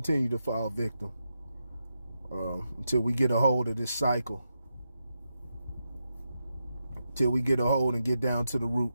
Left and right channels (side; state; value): both; inverted; correlation -0.86